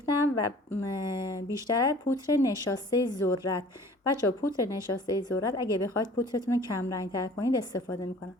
و بیشتر پودر نشاسته ذرت. بچه‌ها پودر نشاسته ذرت اگه بخواید پودرتون رو کم رنگ‌تر کنید استفاده میکنم.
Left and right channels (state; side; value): normal; both; correlation 0.49